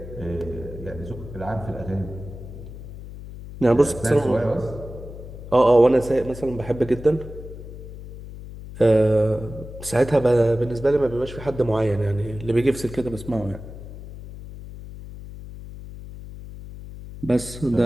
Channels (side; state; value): left; noise; hum, 13 dB below the sound